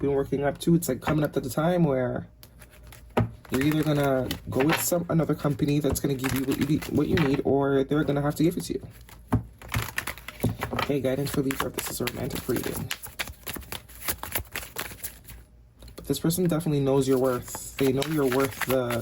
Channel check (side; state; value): both; identical; correlation 1.00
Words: been working up to, it's like coming up to the time where you're either going to go with another company that's going to give you what you need, or they're going to have to give it to you. Okay, guidance for Libra. This is a romantic reading. But this person definitely knows your worth. They know you're worth